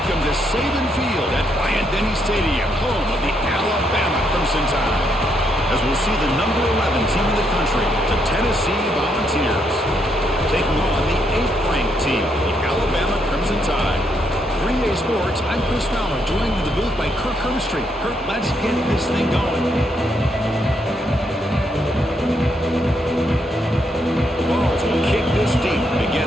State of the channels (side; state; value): both; normal; correlation 0.76